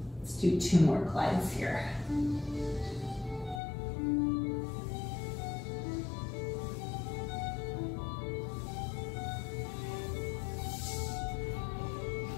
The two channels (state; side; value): drops out; right; at 3.6 s